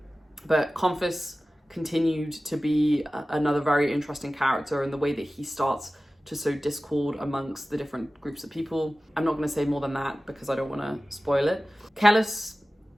but Confus continued to be another very interesting character in the way that he starts to sow discord amongst the different groups of people. I'm not going to say more than that because I don't want to spoil it. Kellis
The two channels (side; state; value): both; normal; correlation 0.96